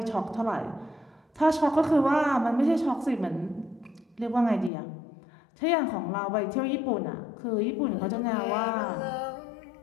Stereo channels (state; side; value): drops out; right; at 4.7 s